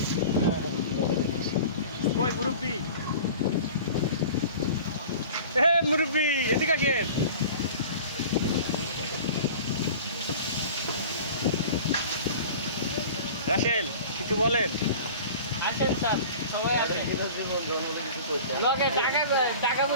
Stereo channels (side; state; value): both; inverted; correlation -0.40